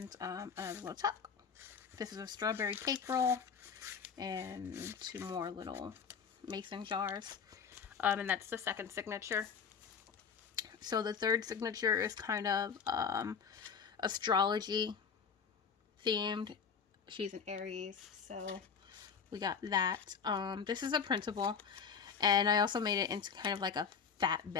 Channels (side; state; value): right; quieter; 6.4 dB